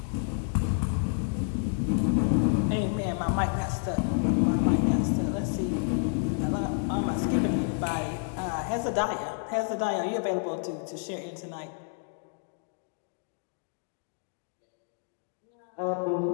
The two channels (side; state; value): right; silent; digital silence